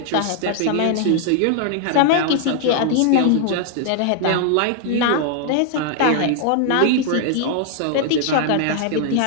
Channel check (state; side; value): different; both; correlation 0.00